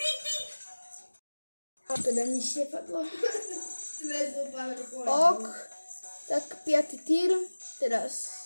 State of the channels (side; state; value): both; inverted; correlation -1.00